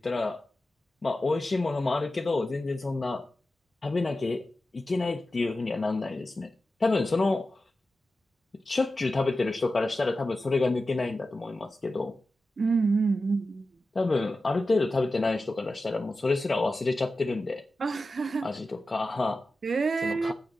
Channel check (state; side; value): normal; both; correlation 0.93